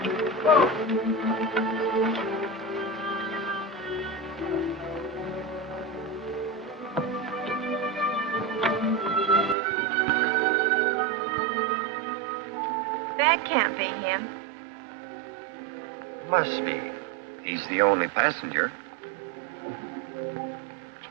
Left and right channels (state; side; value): drops out; left; at 9.6 s